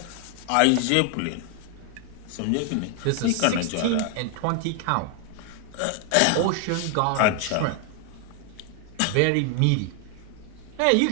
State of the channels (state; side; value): different; both; correlation 0.00